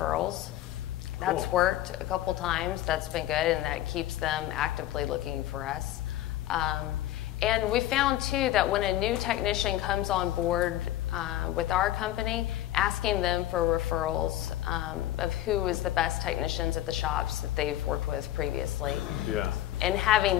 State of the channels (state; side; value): quieter; right; 14.1 dB